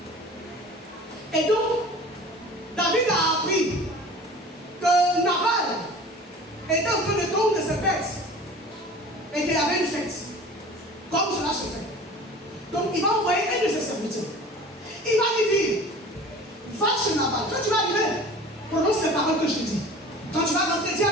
Et donc, David a appris que Nabal était en train de tondre ses bêtes et qu'il y avait une fête. Comme cela se fait. Donc, il va envoyer un de ses serviteurs. Il va lui dire, va chez Nabal. Quand tu vas arriver, prononce les paroles que je te dis. Quand tu vas rentrer, dis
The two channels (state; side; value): normal; both; correlation 0.42